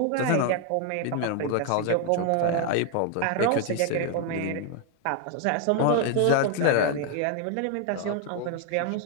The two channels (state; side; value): different; both; correlation 0.01